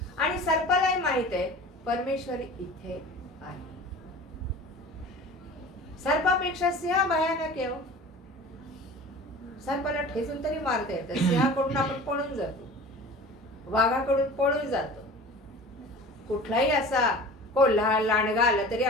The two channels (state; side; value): normal; both; correlation 0.40